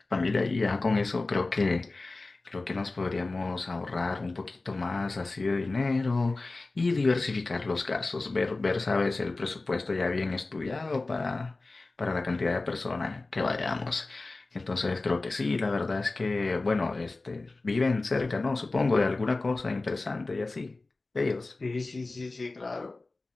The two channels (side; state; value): right; quieter; 3.3 dB